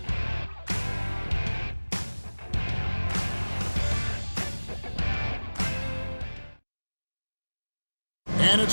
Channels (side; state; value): both; inverted; correlation -1.00